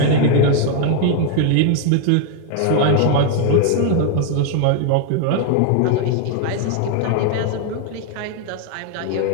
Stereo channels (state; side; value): different; both; correlation 0.01